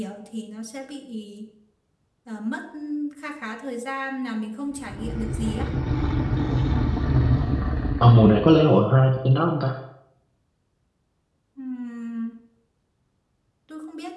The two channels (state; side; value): identical; both; correlation 1.00